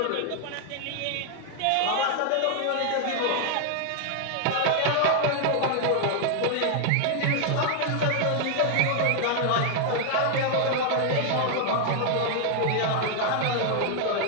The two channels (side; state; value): both; different; correlation 0.00